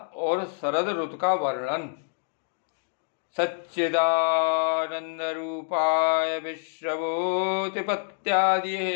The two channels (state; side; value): silent; right; 60 dB below the other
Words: और शरद ऋतु का वर्णन। सच्चिदानंद रूपाय विश्वभूतिपत्यादि